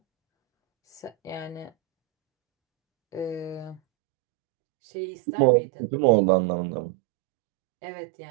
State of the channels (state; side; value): drops out; left; at 3.8 s